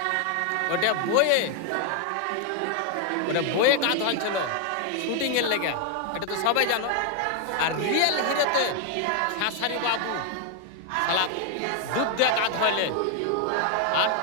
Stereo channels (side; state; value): both; different; correlation 0.00